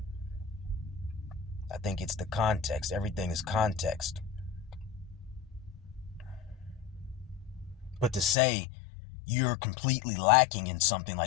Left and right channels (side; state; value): right; drops out; at 8.3 s